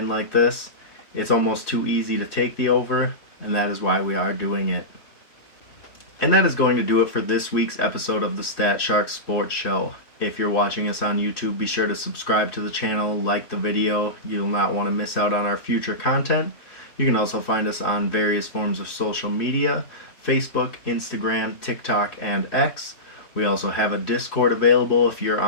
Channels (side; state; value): right; late; 3.2 ms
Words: like this, it's almost too easy to take the over, and that is why we are doing it. And that is going to do it for this week's episode of the StatShark Sports Show. If you're watching us on YouTube, be sure to subscribe to the channel, like the video. You'll not want to miss out on our future content. You can also find us on various forms of social media: Facebook, Instagram, TikTok, and X. We also have a Discord available if you're